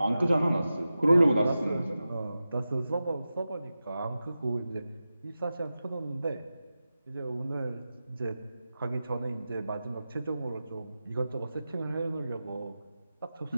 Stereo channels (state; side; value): inverted; both; correlation -0.93